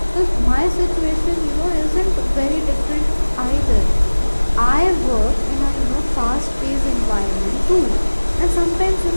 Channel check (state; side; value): inverted; both; correlation -1.00